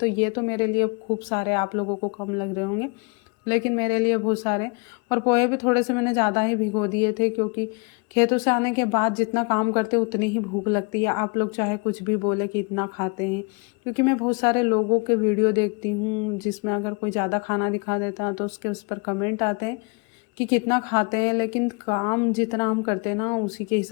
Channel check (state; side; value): quieter; right; 32.9 dB